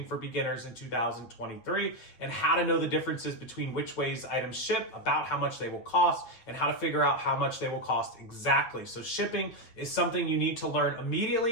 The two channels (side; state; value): right; late; 8.9 ms